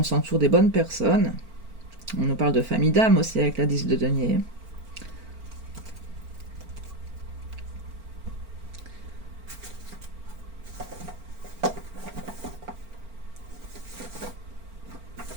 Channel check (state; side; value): late; left; 4.4 ms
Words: s'entoure des bonnes personnes. On nous parle de famille d'âme aussi avec la 10 de denier.